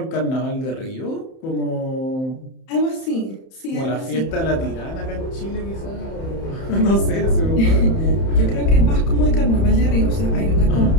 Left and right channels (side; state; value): right; late; 31 ms